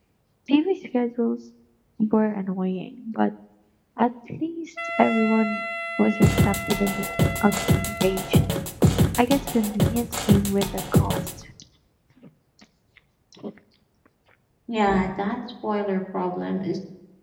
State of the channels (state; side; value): identical; both; correlation 1.00